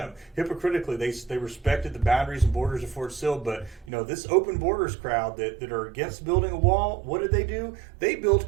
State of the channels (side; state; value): left; drops out; at 3.9 s